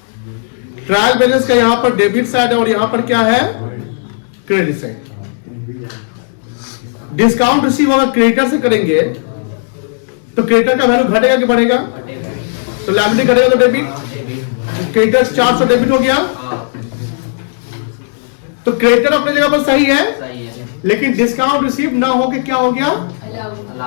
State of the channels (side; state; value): right; silent; digital silence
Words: ट्रायल बैलेंस का यहां पर डेबिट साइड है और यहां पर क्या है? Credit side. डिस्काउंट रिसीव होगा क्रेडिटर से करेंगे, तो क्रेडिटर का वैल्यू घटेगा कि बढ़ेगा? तो लायबिलिटी घटेगा तो डेबिट। क्रेडिटर 400 डेबिट हो गया, तो क्रेडिटर अपने जगह पर सही है, लेकिन डिस्काउंट रिसीव ना होके क्या हो गया?